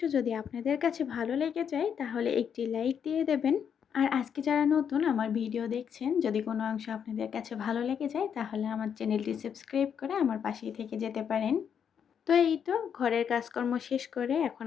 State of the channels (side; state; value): right; quieter; 7.8 dB